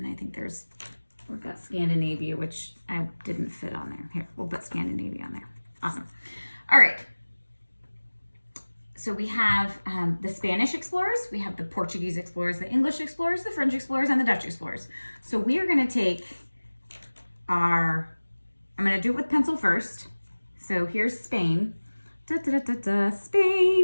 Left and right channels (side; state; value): both; inverted; correlation -1.00